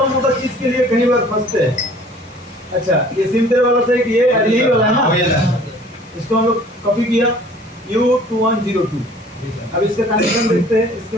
मोटा चीज के लिए कई बार फंसते हैं। अच्छा ये सिम तेरे वाला से ये यही वाला है ना, इसको हम लोग कॉपी किया U2102। अब इसका कनेक्शन देखते हैं,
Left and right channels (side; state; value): both; normal; correlation 0.51